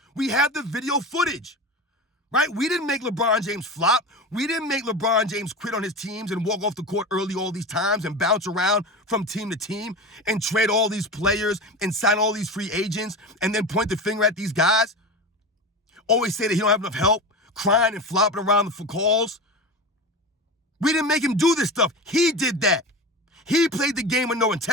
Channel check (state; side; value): normal; both; correlation 0.27